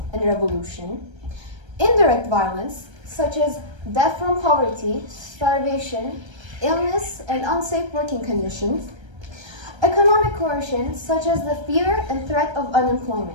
and revolution; indirect violence, such as death from poverty, starvation, illness, and unsafe working conditions; economic coercion, such as the fear and threat of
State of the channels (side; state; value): left; late; 1.3 ms